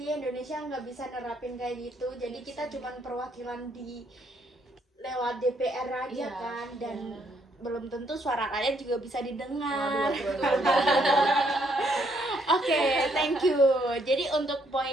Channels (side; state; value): both; normal; correlation 0.71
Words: Indonesia nggak bisa nerapin kayak gitu. Jadi kita cuman perwakilan di lewat DPR aja Iya, kan, dan iya. belum tentu suara rakyat juga bisa didengar. Waduh. Oke, thank you. Jadi untuk